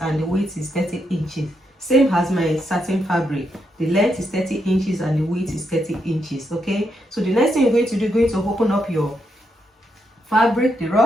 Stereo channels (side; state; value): both; normal; correlation 0.80